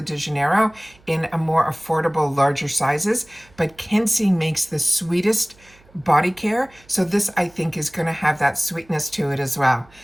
Janeiro in a more affordable, larger sizes. But Kensie makes the sweetest body care. So this, I think, is going to have that sweetness to it as well.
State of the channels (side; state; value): right; noise; hum, 29 dB below the sound